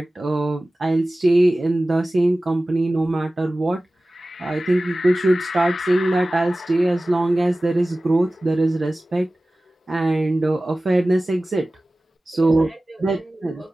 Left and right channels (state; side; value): normal; both; correlation 0.97